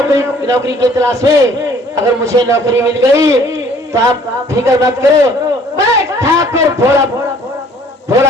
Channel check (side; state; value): both; normal; correlation 0.57